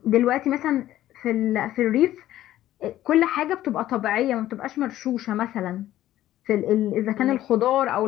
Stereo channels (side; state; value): right; quieter; 13.7 dB